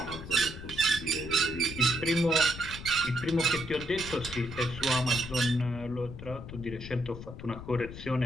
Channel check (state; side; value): noise; left; rumble, 11 dB below the sound